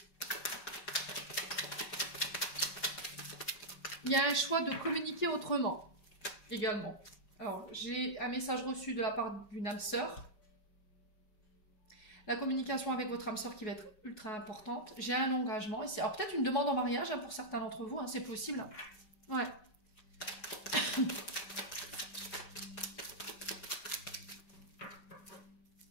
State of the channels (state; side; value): late; right; 5.2 ms